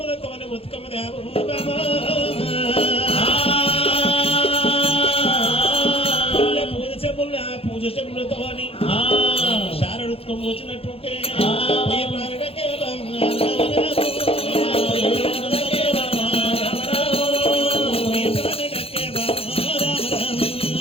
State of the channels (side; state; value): right; late; 0.28 ms